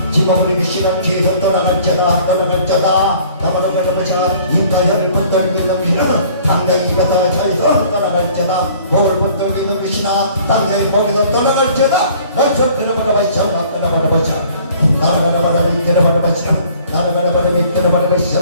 지목을 귀신아 뒤에서 떠나갈 자다. 떠나갈 자다. 나라가라 바라바시아. 입과 혀를 붙들고 있는 귀신아 당장히 입에서 차에서 떠나갈 자다. 목을 붙들고 있는 귀신아 당장히 목에서 떠나갈 자다. 나처럼 들어바라바시아. 나라바라바시아. 나라바라바시아.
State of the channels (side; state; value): both; inverted; correlation -0.54